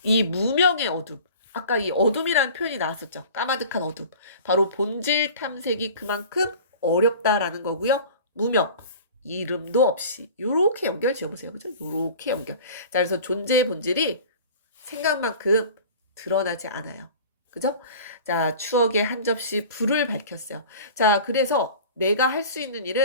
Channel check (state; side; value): inverted; both; correlation -0.41